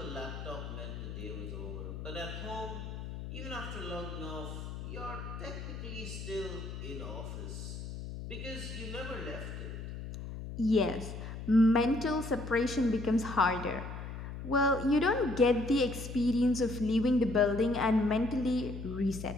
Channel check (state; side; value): noise; left; hum, 8 dB below the sound